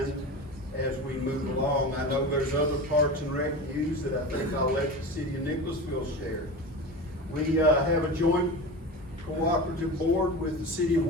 as we move along. I know there's other parks and rec news that I think I'll let the city of Nicholasville share. We have a joint cooperative board with the city of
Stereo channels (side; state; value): both; normal; correlation 0.28